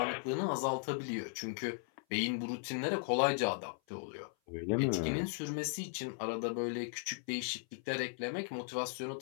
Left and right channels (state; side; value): silent; right; 53 dB below the other